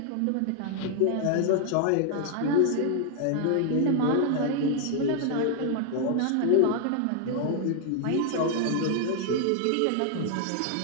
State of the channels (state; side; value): different; both; correlation 0.00